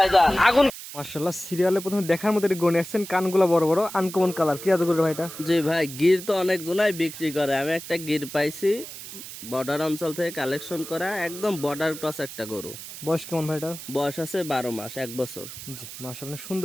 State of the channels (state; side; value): noise; right; hiss, 12 dB below the sound